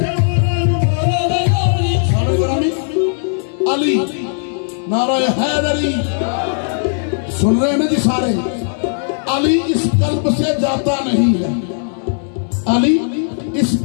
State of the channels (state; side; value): silent; right; digital silence